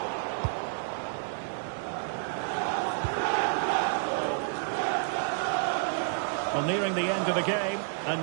Well, nearing the end of the game, and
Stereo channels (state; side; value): silent; left; 57 dB below the other